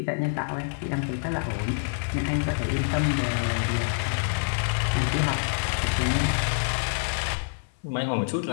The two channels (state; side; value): silent; right; 60 dB below the other